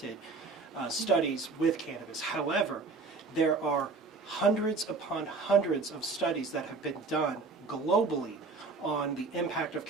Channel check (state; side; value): quieter; left; 4.2 dB